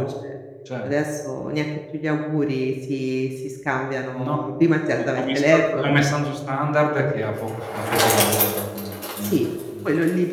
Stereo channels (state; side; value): identical; both; correlation 1.00